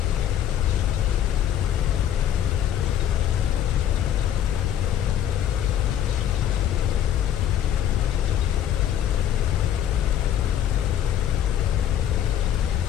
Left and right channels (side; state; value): right; quieter; 10.3 dB